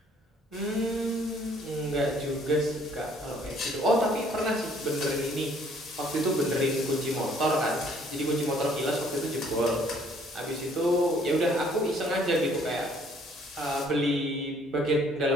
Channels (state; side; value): normal; both; correlation 0.61